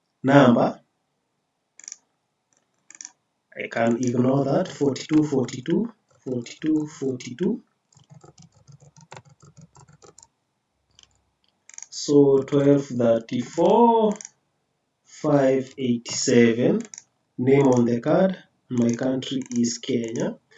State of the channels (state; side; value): identical; both; correlation 1.00